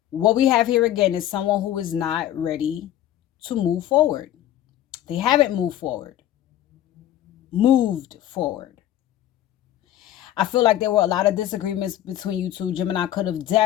what we have here again is someone who is not ready to move forward. They haven't moved forward. I feel like there were a lot of disagreements between you two. Gemini could have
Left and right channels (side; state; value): right; quieter; 12.4 dB